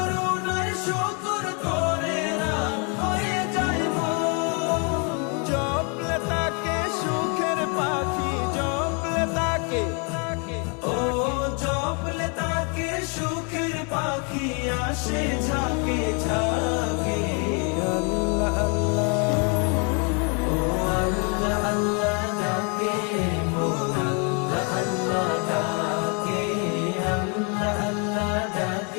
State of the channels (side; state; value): right; quieter; 36.3 dB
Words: শুকর করে রাত হয়ে যায় মন জপলে তাকে সুখের পাখি জপলে তাকে ও জপলে তাকে সুখের পাখি আসে ঝাঁকে ঝাঁকে আল্লাহ আল্লাহ ও আল্লাহ আল্লাহ ডাকে মন আল্লাহ আল্লাহ ডাকে আল্লাহ আল্লাহ